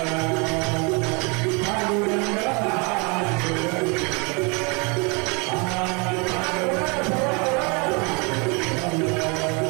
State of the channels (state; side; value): quieter; left; 31.3 dB